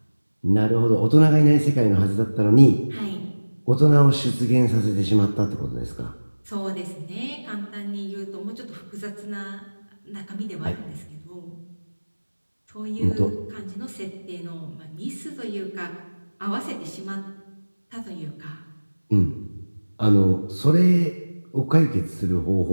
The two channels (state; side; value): inverted; both; correlation -1.00